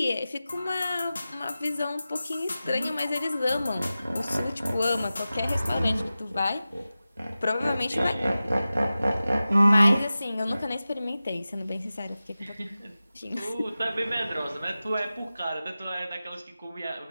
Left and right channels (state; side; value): inverted; both; correlation -0.95